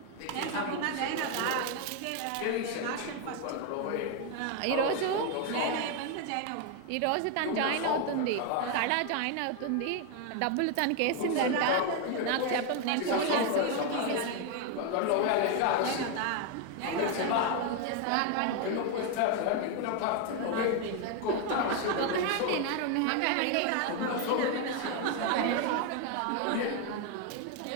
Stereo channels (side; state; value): both; different; correlation 0.01